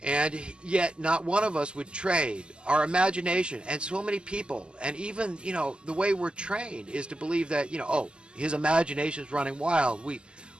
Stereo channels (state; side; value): late; left; 0.049 ms